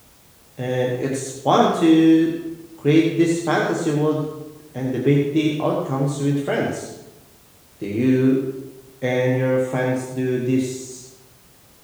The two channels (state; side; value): identical; both; correlation 1.00